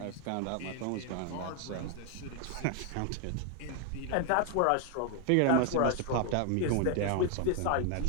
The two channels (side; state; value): both; different; correlation 0.00